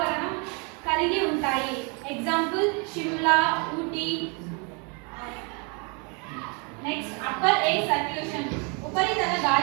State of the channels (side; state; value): left; quieter; 33.9 dB